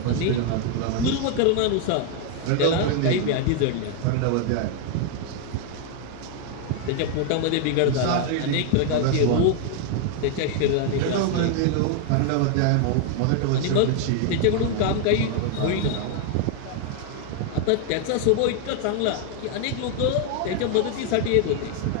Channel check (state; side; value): different; both; correlation 0.00